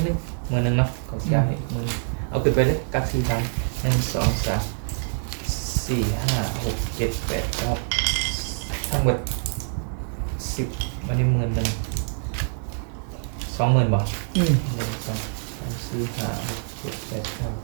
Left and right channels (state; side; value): silent; left; digital silence